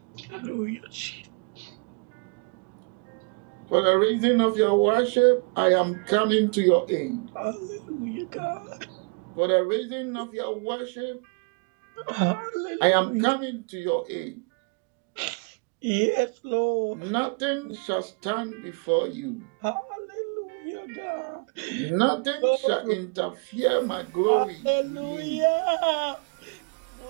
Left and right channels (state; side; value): quieter; left; 34.6 dB